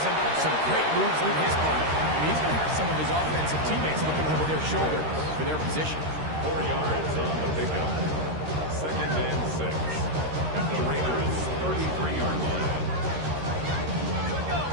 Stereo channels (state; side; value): late; left; 13 ms